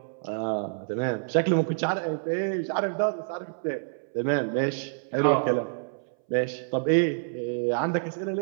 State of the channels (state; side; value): silent; left; 60 dB below the other